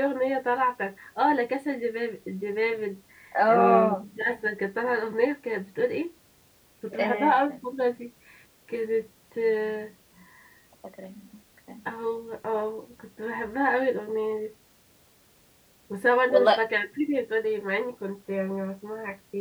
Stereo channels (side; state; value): both; identical; correlation 1.00